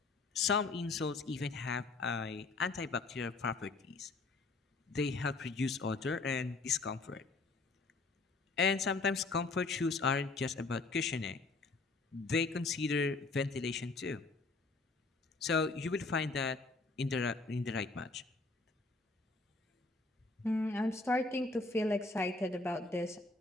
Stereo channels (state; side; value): quieter; right; 3.7 dB